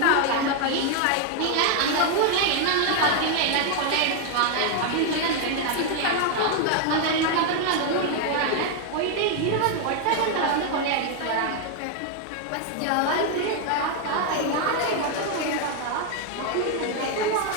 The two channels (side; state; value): both; different; correlation 0.00